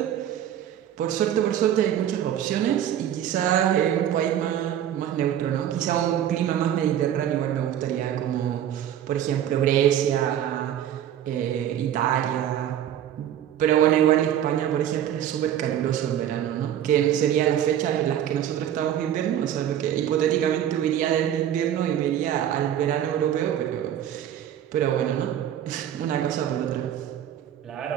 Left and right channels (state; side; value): quieter; left; 10.6 dB